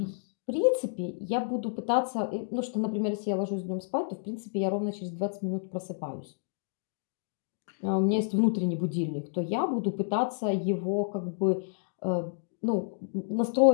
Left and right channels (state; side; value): silent; right; digital silence